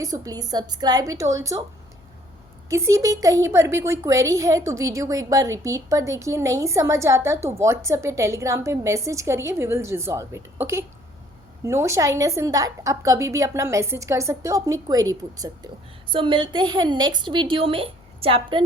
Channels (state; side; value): noise; left; hum, 29 dB below the sound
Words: so please subscribe it also. किसी भी कहीं पर भी कोई क्वेरी है तो वीडियो को एक बार रिपीट पर देखिए, नहीं समझ आता तो व्हाट्सएप या टेलीग्राम पे मैसेज करिए, we will resolve it, okay. No shyness in that, आप कभी भी अपना मैसेज कर सकते हो, अपनी क्वेरी पूछ सकते हो। सो मिलते हैं नेक्स्ट वीडियो में चैप्टर